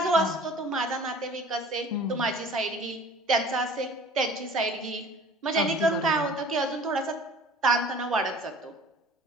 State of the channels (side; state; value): both; normal; correlation 0.47